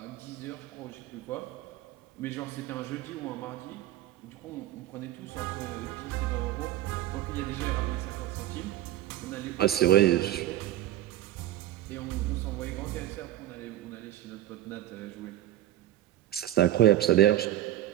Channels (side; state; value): left; quieter; 13.6 dB